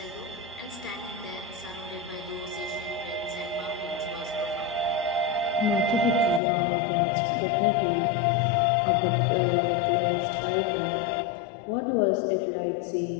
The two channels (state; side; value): drops out; right; at 6.4 s